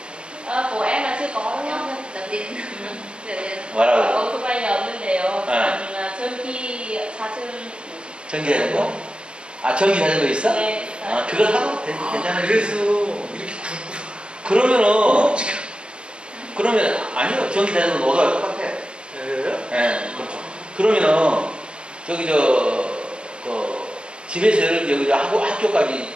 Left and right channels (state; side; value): late; left; 0.055 ms